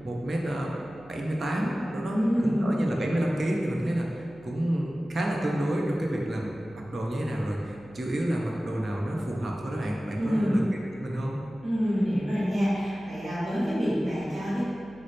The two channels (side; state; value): right; noise; hum, 21 dB below the sound